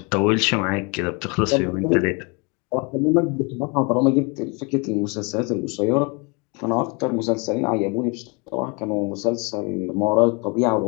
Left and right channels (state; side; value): quieter; right; 30.7 dB